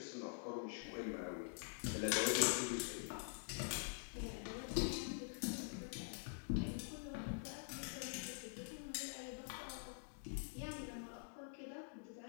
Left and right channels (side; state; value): right; silent; digital silence